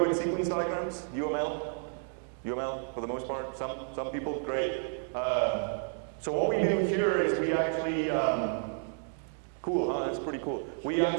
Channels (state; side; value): silent; left; 57 dB below the other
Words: sequence diagrams? UML? UML for the most part? Some people? Great. So what we do here is we actually, cool, huh? That's pretty cool. We